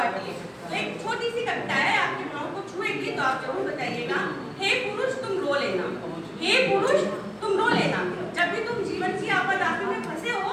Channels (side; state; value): both; identical; correlation 1.00